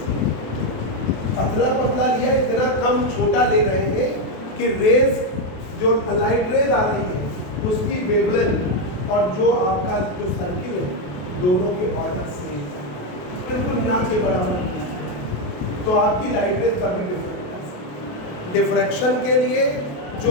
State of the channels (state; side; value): late; right; 27 ms